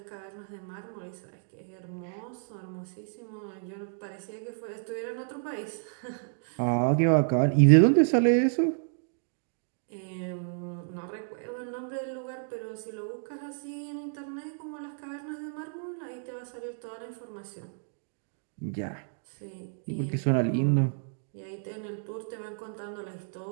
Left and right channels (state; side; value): silent; left; digital silence